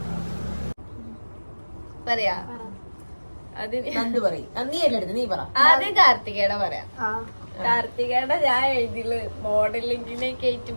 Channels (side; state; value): both; inverted; correlation -1.00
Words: പറയാ ആദ്യം കാർത്തികയുടെ പറയാം. കാർത്തികയുടെ ഞാൻ എഴുതിയില് മോഡലിംഗിനൊക്കെ ആയിട്ട്